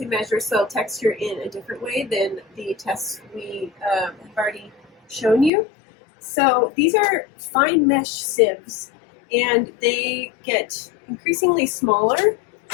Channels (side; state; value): right; drops out; at 5.5 s